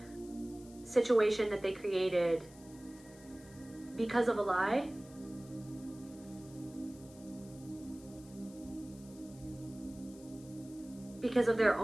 situation that they created because of a lie. Because of their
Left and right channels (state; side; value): noise; left; hiss, 22 dB below the sound